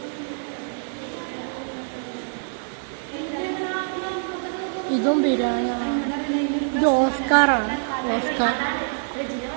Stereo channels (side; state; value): left; silent; digital silence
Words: ഇതും പിരാന. ഇത് ഓസ്കാറാണ്. ഓസ്കാർ